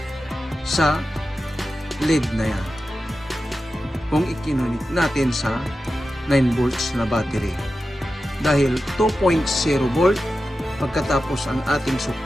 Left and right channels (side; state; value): both; normal; correlation 0.92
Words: sa LED na yan kung ikinunik natin sa 9 volts na battery? Dahil 2.0 volt, pagkatapos ang ating